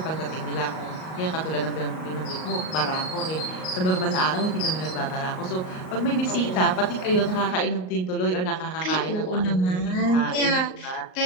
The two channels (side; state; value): right; late; 38 ms